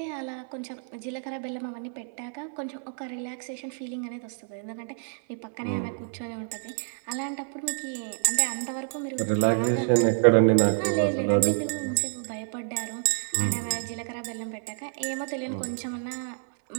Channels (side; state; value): left; silent; 59 dB below the other